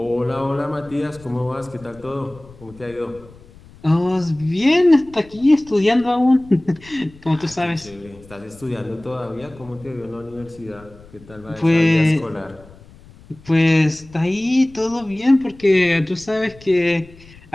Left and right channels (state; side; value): noise; left; rumble, 23 dB below the sound